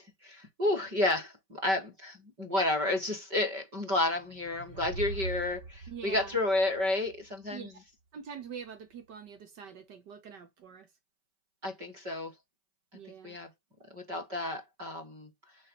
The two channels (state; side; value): late; left; 5.2 ms